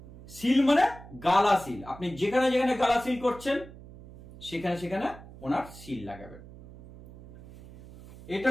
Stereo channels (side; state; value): right; noise; hum, 18 dB below the sound